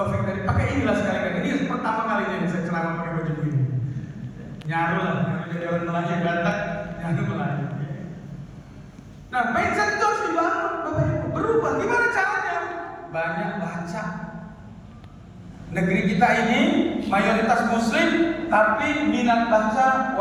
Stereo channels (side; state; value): both; identical; correlation 1.00